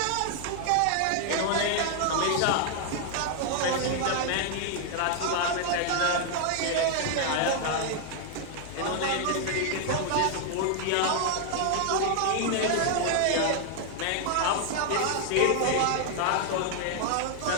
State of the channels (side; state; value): both; different; correlation 0.00